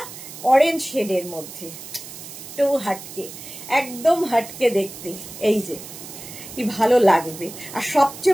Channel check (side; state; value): right; noise; hiss, 13 dB below the sound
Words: অরেঞ্জ শেডের মধ্যে, তো একদম হাটকে দেখতে। এই যে কি ভালো লাগবে, আর